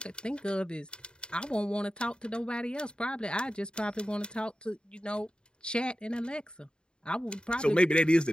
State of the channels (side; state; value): right; late; 0.050 ms